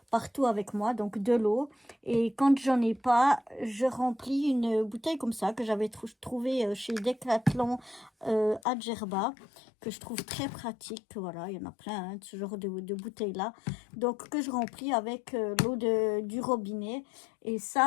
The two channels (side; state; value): right; drops out; at 8.6 s